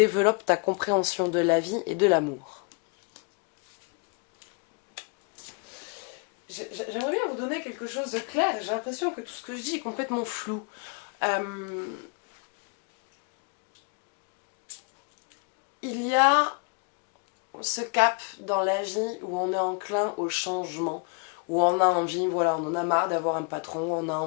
ta compréhension de la vie et de l'amour. J'aimerais bien vous donner quelque chose de clair. J'ai l'impression que tout ce que je dis est complètement flou. Il y a ce cap dans la vie où on est enclin au changement, où on a envie, voilà, on en a marre d'avoir un patron, on a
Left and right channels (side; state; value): right; quieter; 34.9 dB